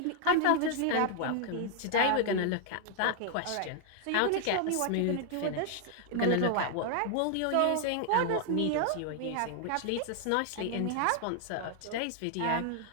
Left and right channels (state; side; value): different; both; correlation 0.00